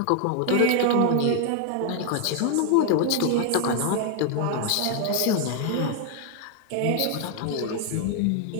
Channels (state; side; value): different; both; correlation 0.00